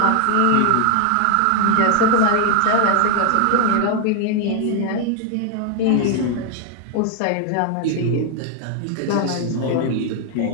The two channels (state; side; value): different; both; correlation 0.00